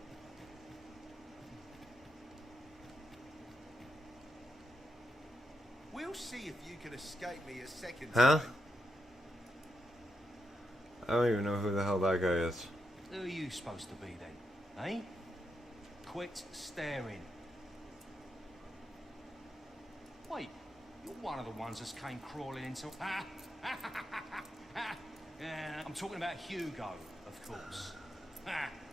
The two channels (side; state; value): both; normal; correlation 0.84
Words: We'll see if you can escape me a second Huh? time. I don't even know who the hell that guy is. Who are you supposed to be then, eh? Quit staring. Wait, you're one of the ones that came crawling into... I'm talking about Hugo, of course.